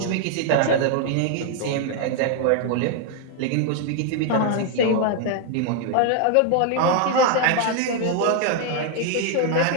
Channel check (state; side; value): different; both; correlation 0.00